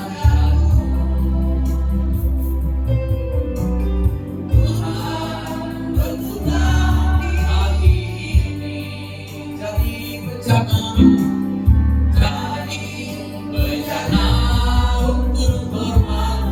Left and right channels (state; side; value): identical; both; correlation 1.00